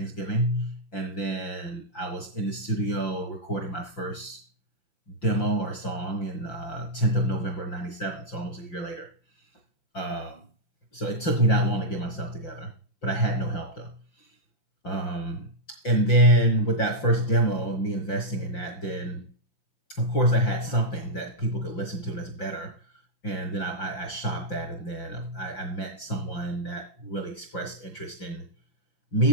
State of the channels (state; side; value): late; right; 5.8 ms